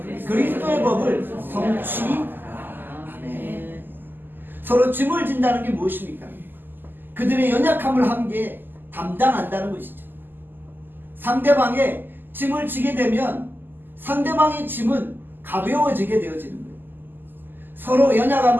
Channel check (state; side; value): late; left; 0.092 ms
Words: 그리스도의 법을 성취하네. 서로 짐을 진다는 게 무엇입니까? 그들의 연약함을 함께 담당한다는 것이죠. 상대방의 짐을 지게 되면 상대방의 짐은 가벼워지게 되어지는 거예요. 서로